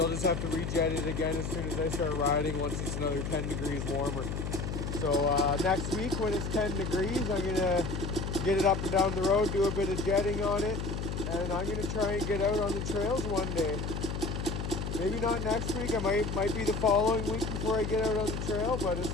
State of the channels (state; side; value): noise; left; hum, 3 dB below the sound